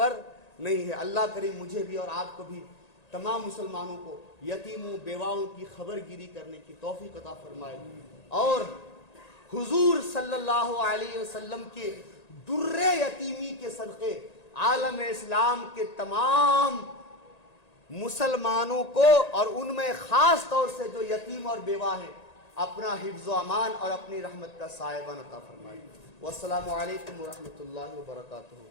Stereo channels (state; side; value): late; right; 1.9 ms